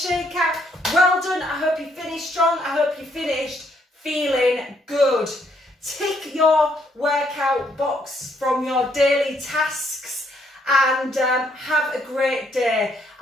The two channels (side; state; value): both; normal; correlation 0.71